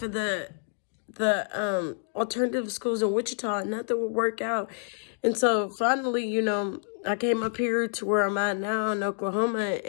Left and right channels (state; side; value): silent; right; digital silence